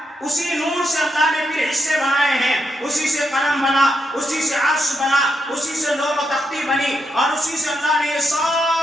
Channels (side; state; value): both; normal; correlation 0.82